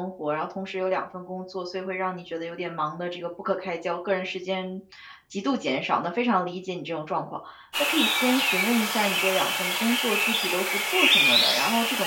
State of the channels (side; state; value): both; identical; correlation 1.00